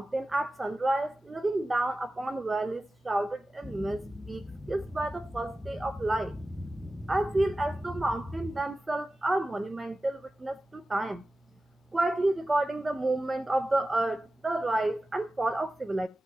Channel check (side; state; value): both; normal; correlation 0.95